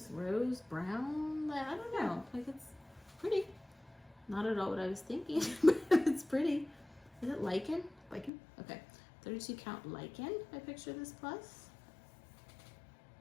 brown. I don't know. Like it's pretty. Not at all what I was thinking, but it's pretty. Is it lichen? Lichen. Okay. 32 count Lichen by Picture This Plus.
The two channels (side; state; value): right; drops out; at 8.3 s